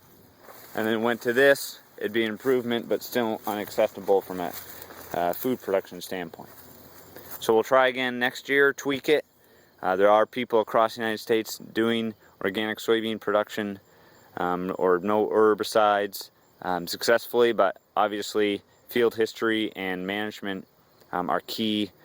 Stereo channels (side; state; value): both; identical; correlation 1.00